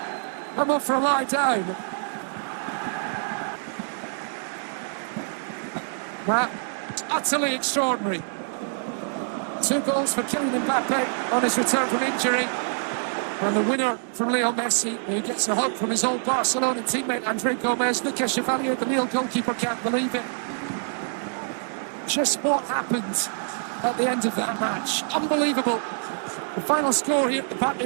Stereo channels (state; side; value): silent; left; digital silence